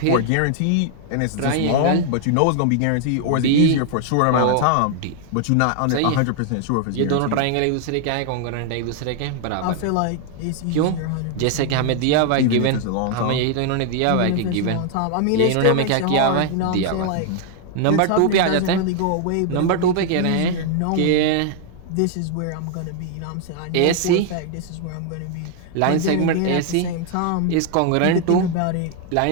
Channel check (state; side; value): different; both; correlation 0.00